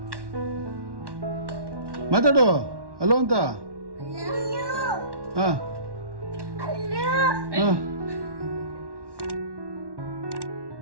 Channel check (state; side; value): late; left; 1.1 ms